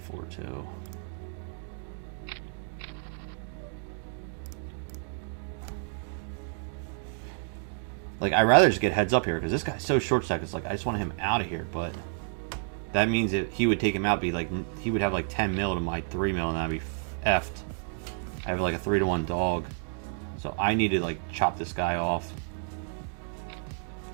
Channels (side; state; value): left; silent; 58 dB below the other